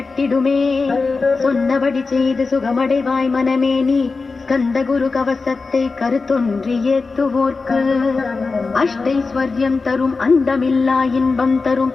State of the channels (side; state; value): right; quieter; 4.2 dB